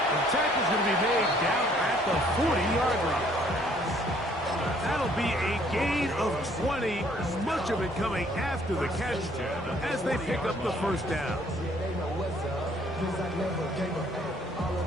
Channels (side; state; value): both; normal; correlation 0.62